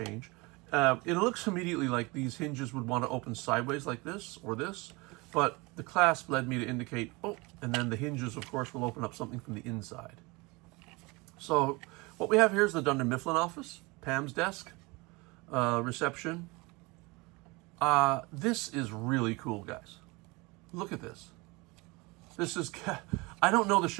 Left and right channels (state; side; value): quieter; left; 25.5 dB